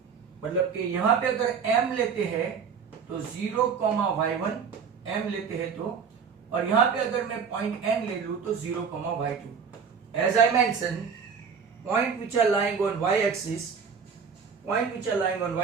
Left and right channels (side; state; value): left; quieter; 6.3 dB